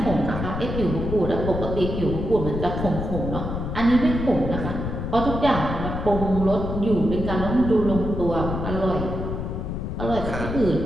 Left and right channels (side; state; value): left; noise; rumble, 4 dB below the sound